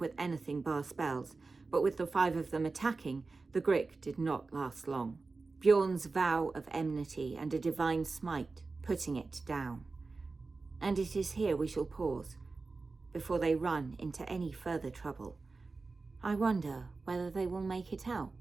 anything bar spells, but with the 5 of them attacking, the Grick did not last long. Bjorn's vow of enmity and a divine smite, putting it down. And it is here we shall pause, before they run into any further trouble. I wonder whether they will make it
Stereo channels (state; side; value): quieter; left; 3.9 dB